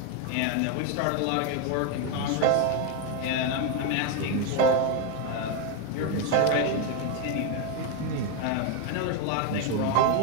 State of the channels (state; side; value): different; both; correlation 0.01